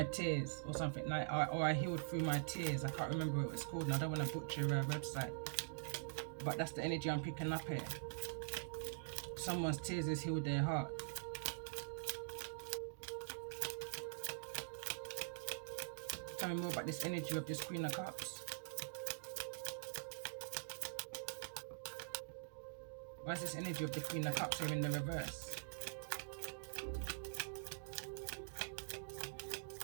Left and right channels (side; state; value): left; silent; digital silence